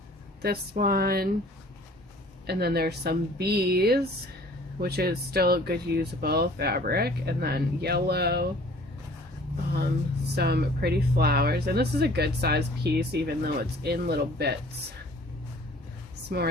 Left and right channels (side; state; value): both; normal; correlation 0.51